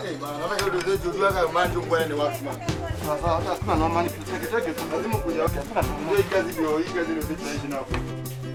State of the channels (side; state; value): both; identical; correlation 1.00